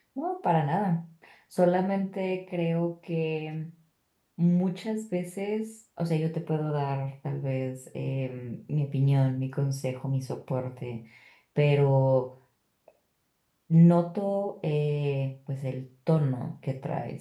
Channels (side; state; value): both; identical; correlation 1.00